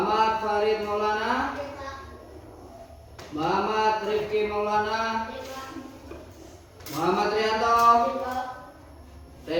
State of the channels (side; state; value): both; identical; correlation 1.00